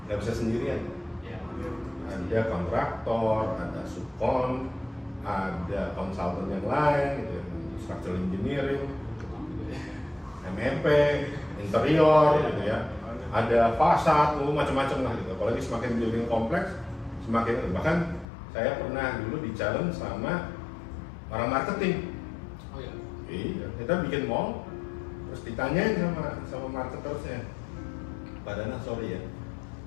nggak bisa sendirian. Ada kontraktor, ada subkon, ada konsultan yang lain, gitu, structural engineering, MEP, interior, gitu ya. Ada fasad, macam-macam lah gitu. Apalagi semakin building kompleks, semakin bahkan saya pernah dulu di challenge sama orang marketing. Oh iya. Iya, kita bikin mall. Terus ditanyain sama marketersnya, Pak Dana sorry ya,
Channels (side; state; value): right; drops out; at 18.2 s